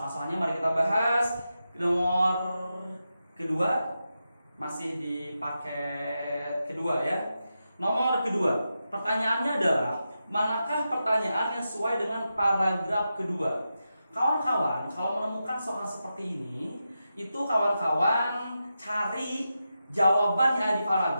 mari kita bahas nomor kedua, masih di paket kedua ya. Nomor kedua, pertanyaannya adalah manakah pertanyaan yang sesuai dengan paragraf kedua? Kawan-kawan, kalau menemukan soal seperti ini, itu kawan-kawan cari jawaban yang ada di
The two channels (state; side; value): inverted; both; correlation -0.89